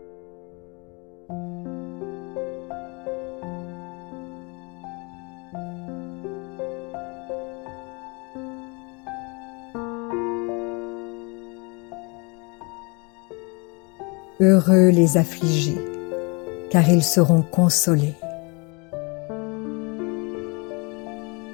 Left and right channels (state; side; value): quieter; right; 30.6 dB